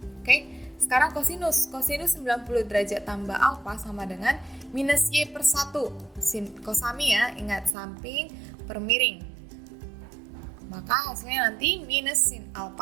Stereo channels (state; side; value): drops out; left; at 7.8 s